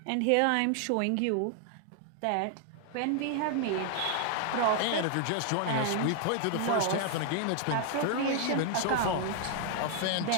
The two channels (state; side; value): different; both; correlation 0.00